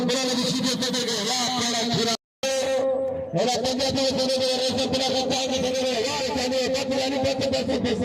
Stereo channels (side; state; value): both; identical; correlation 1.00